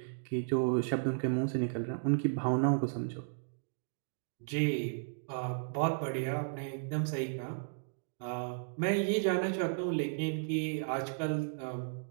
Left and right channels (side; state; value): left; silent; digital silence